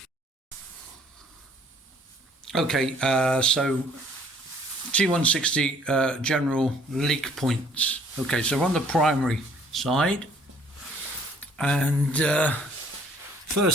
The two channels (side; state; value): both; normal; correlation 0.59